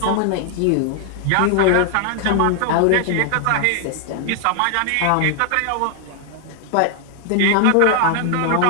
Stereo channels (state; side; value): different; both; correlation 0.00